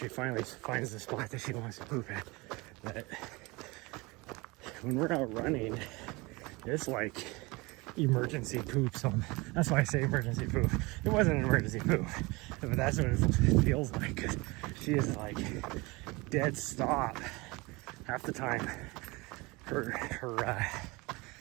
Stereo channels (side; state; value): left; quieter; 24.5 dB